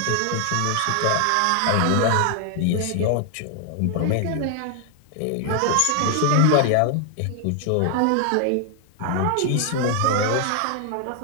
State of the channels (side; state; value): both; different; correlation 0.00